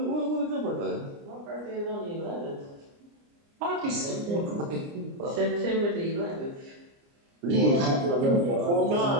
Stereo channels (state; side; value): late; left; 29 ms